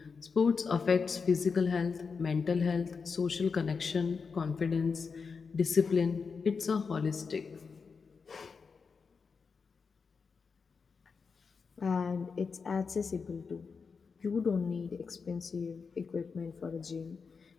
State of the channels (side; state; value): right; quieter; 5.3 dB